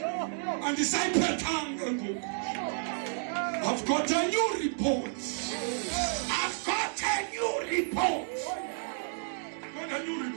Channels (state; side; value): silent; left; digital silence